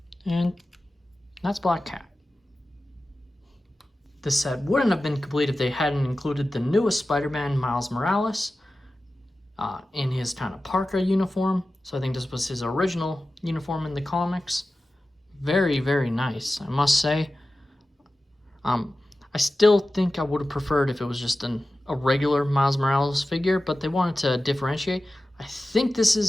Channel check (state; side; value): normal; both; correlation 0.95